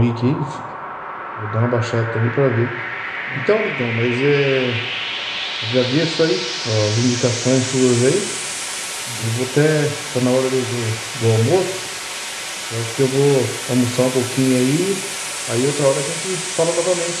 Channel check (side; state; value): both; identical; correlation 1.00